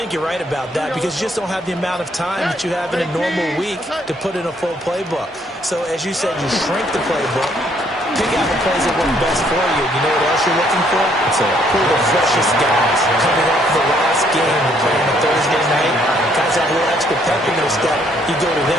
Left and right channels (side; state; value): both; normal; correlation 0.67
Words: you're right about that because you just don't have the amount of time that you have in a normal week to put in a full playbook. So as you said, you shrink the playbook, pick out the plays that work best for you. You know what else you're looking for? It's pull the freshest guys coming up the last game to play on a Thursday night. Guys have a little extra pep in their step. You go to